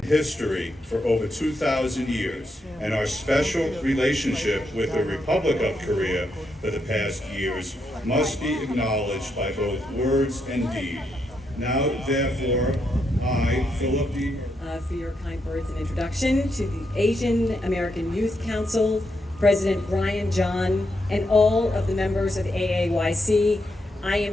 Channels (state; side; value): normal; both; correlation 0.81